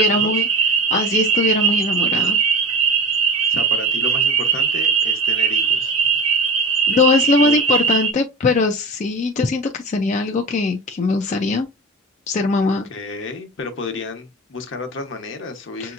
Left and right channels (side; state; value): both; normal; correlation 0.31